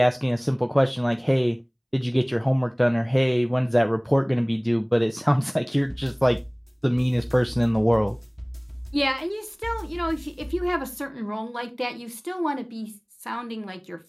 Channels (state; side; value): identical; both; correlation 1.00